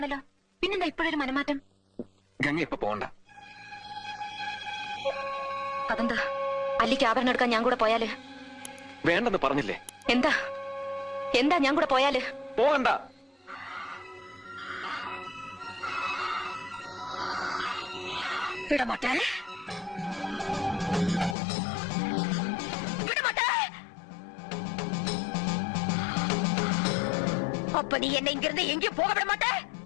പിന്നെന്താ ഇപ്പോഴൊരു മനമാറ്റം? ഗംഗ ഇപ്പൊ പോണ്ട. അതെന്താ? അല്ലിക്ക് ആഭരണം എടുക്കാൻ ഞാൻ കൂടെ പോയാല്? വേണ്ടെന്ന് പറഞ്ഞില്ലേ? എന്താ എന്താ ഞാൻ കൂടെ പോയാല്? പോകണ്ട. വിടമാട്ടേ, அப்ப நீ என்ன இங்கிருந்து எங்கேயும் போக விட மாட்ட?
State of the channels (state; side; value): drops out; right; at 21.4 s